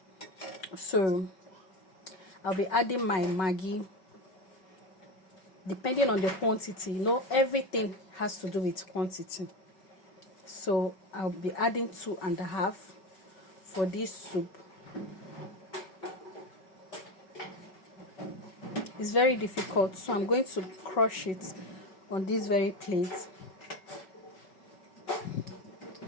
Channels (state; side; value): late; right; 5.3 ms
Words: So I'll be adding my Maggi. Depending on the quantity, everything has to do with quantity. So I'll be adding 2.5 for this soup. It's very difficult, so I'm going to crush it on this very plate.